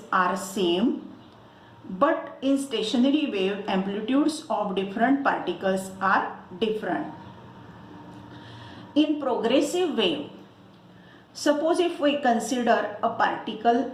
are same, but in stationary wave, amplitudes of different particles are different. In progressive wave, suppose if we consider a particle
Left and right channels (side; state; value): both; identical; correlation 1.00